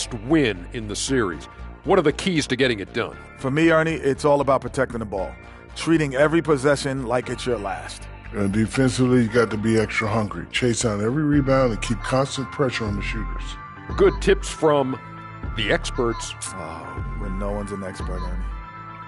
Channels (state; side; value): identical; both; correlation 1.00